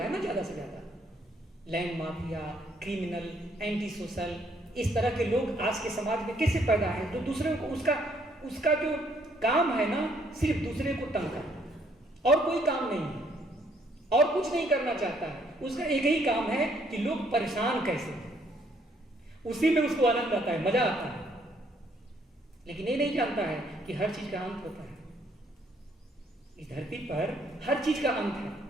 ना, ज्यादा से ज्यादा land mafia, criminal, anti social, इस तरह के लोग आज के समाज में कैसे पैदा है? तो दूसरे को उसका जो काम है ना, सिर्फ दूसरे को तंग करना, और कोई काम नहीं है, और कुछ नहीं करना चाहता है। उसका एक ही काम है कि लोग परेशान कैसे हैं, उसी में उसको आनंद आता है, मजा आता है। लेकिन ये नहीं जानता है कि हर चीज का अंत होता है। इस धरती पर हर चीज का अंत है,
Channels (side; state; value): both; normal; correlation 0.67